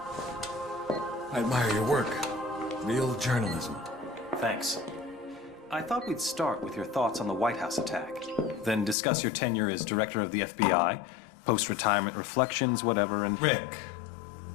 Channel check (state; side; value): drops out; right; at 9.0 s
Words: I admire your work. Real journalism. Thanks. I thought we'd start with your thoughts on the White House attack, then discuss your tenure as director of the FBI, post-retirement reflections, whatever, and... Rick.